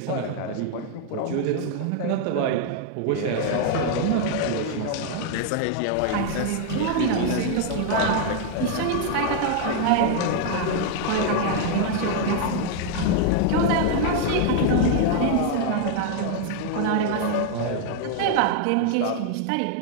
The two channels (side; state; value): both; different; correlation 0.00